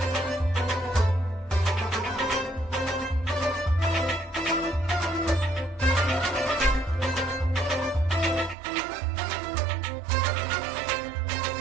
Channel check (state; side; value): drops out; left; at 8.6 s